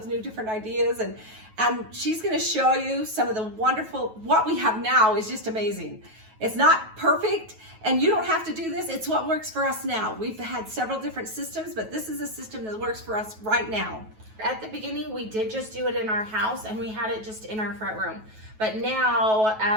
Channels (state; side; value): late; left; 9.3 ms